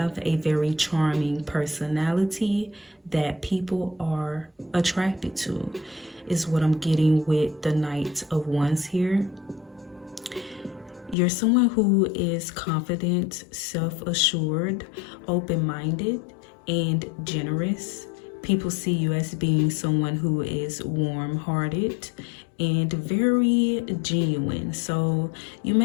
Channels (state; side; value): drops out; right; at 11.2 s